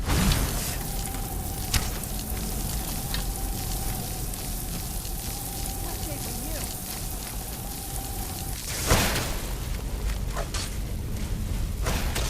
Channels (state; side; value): identical; both; correlation 1.00